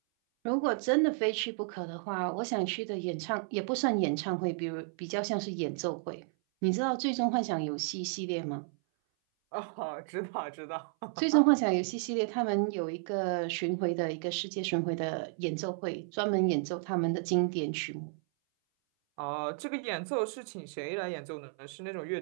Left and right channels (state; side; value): silent; left; 56 dB below the other